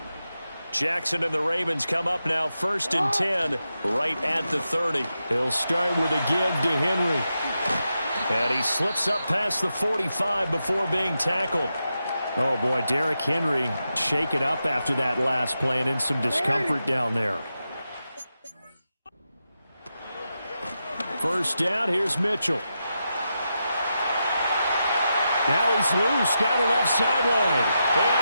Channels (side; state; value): both; inverted; correlation -0.87